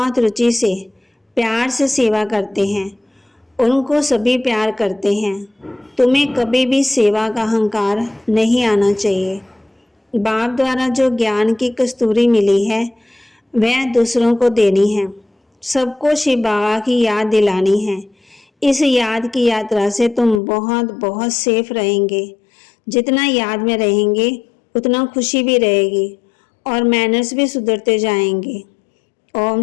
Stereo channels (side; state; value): right; drops out; at 20.4 s